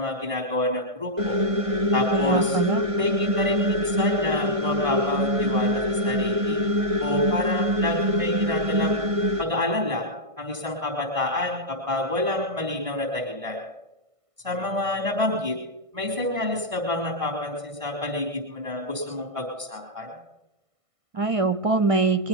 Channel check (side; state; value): left; late; 1.5 ms